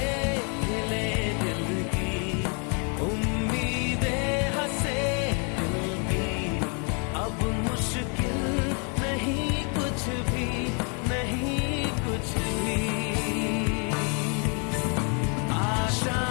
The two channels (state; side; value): quieter; right; 37.2 dB